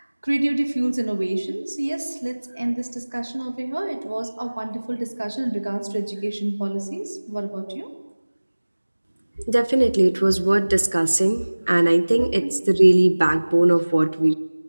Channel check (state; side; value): inverted; both; correlation -1.00